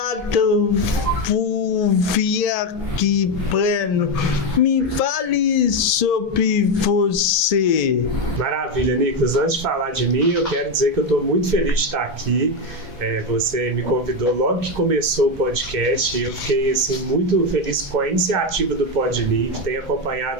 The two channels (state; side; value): normal; both; correlation 0.10